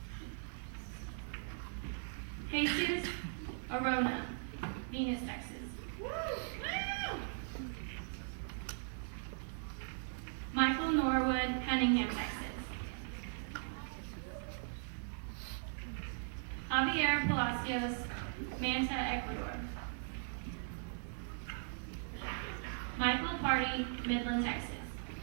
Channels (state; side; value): silent; left; 52 dB below the other